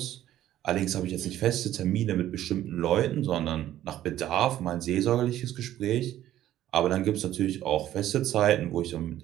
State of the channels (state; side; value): quieter; left; 12.9 dB